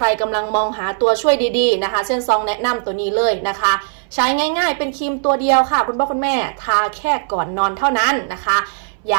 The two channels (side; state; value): left; silent; 63 dB below the other